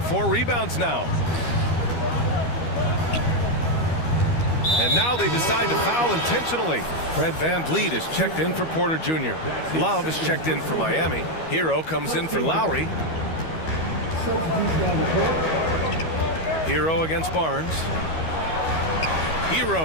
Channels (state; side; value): late; right; 12 ms